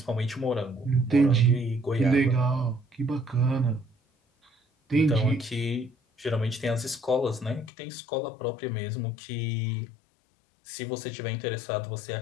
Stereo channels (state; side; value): drops out; right; at 7.7 s